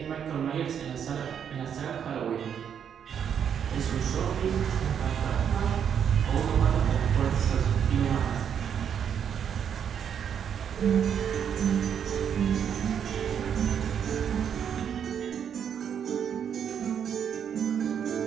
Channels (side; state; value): left; quieter; 8.2 dB